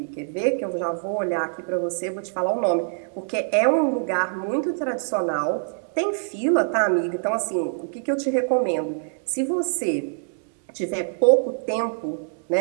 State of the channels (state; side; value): silent; left; digital silence